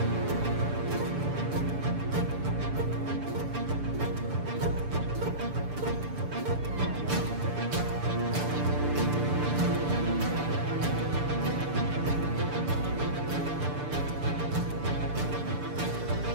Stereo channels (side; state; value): left; late; 6.8 ms